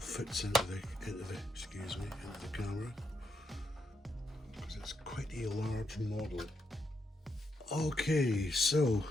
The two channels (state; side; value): normal; both; correlation 0.81